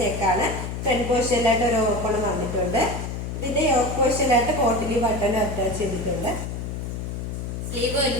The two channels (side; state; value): left; noise; hum, 5 dB below the sound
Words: നെക്കാണ്. ഫ്രണ്ട് പോർഷനിലായിട്ട് ഒരു ഓപ്പൺ വന്നിട്ടുണ്ട്. ഇതിന്റെ യോക്ക് പോർഷനിലായിട്ട് കോട്ടിലി ബട്ടൺ അറ്റാച്ച് ചെയ്തിട്ടുണ്ട്. സ്ലീവ്